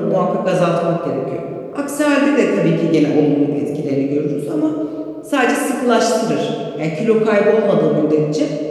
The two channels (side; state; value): both; identical; correlation 1.00